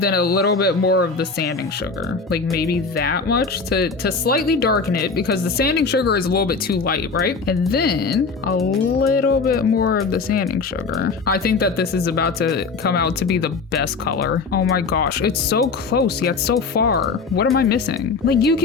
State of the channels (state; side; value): quieter; right; 4.6 dB